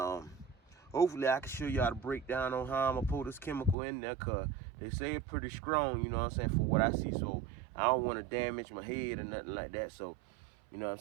hopefully I can show y'all the breakdown on how I'm gonna pull this chemical in there, cause they say it's pretty strong, you know what I'm saying, for what I see. So I don't wanna damage my head or nothing like that. So, you know what I'm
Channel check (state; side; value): drops out; left; at 3.8 s